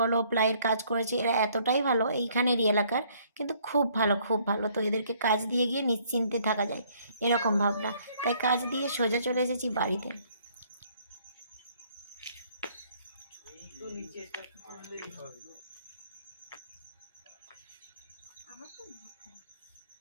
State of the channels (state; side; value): inverted; both; correlation -0.63